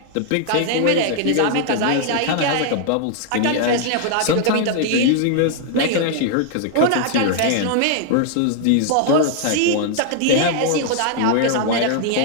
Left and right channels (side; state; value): both; different; correlation 0.00